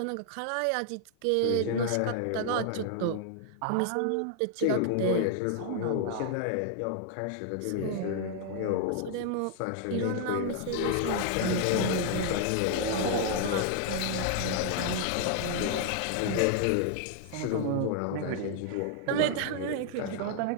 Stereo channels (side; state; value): both; different; correlation 0.00